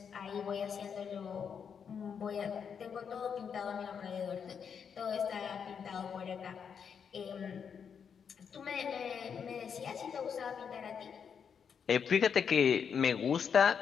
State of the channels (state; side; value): quieter; right; 7.0 dB